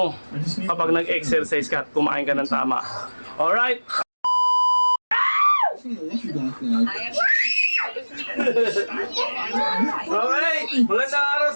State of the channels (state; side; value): inverted; both; correlation -1.00